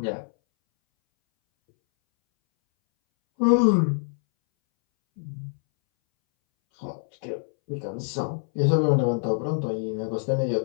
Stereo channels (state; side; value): silent; right; 62 dB below the other